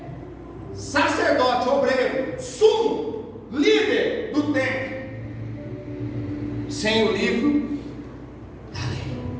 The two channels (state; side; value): identical; both; correlation 1.00